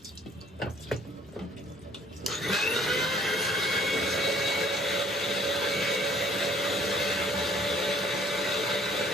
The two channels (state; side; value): normal; both; correlation 0.57